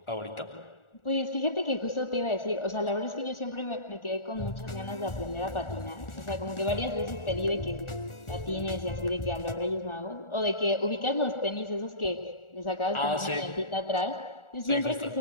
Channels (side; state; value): right; late; 1.4 ms